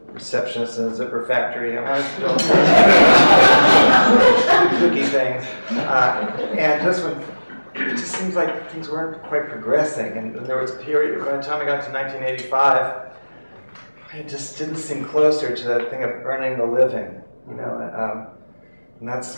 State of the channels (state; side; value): inverted; both; correlation -1.00